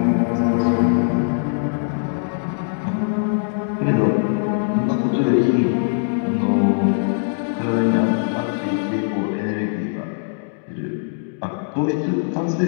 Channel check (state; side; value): silent; right; digital silence